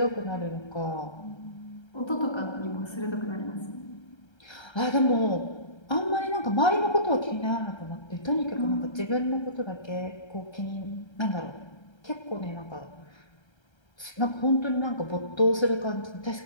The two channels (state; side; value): late; right; 1.3 ms